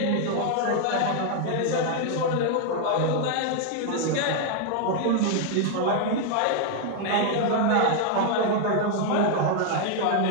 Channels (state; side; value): different; both; correlation 0.00